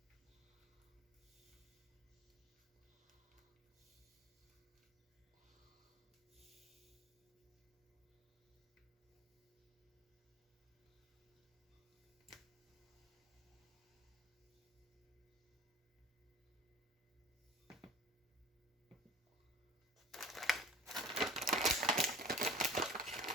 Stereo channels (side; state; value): both; normal; correlation 0.42